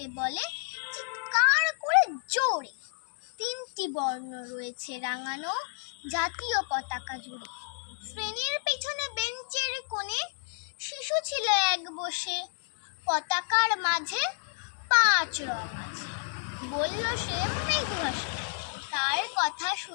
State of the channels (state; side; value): silent; right; digital silence